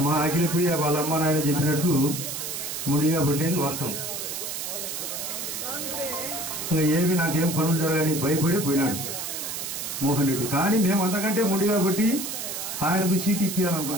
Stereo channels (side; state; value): right; noise; hiss, 5 dB below the sound